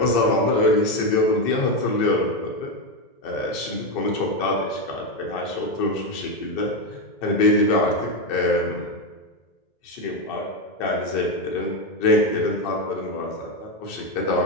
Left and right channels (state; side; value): late; right; 2.6 ms